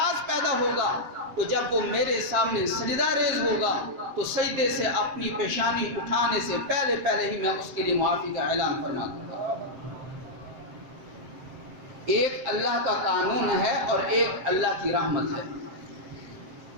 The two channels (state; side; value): late; left; 7.5 ms